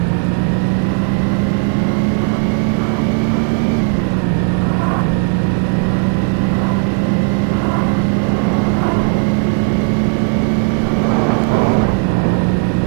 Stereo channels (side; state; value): left; quieter; 34.2 dB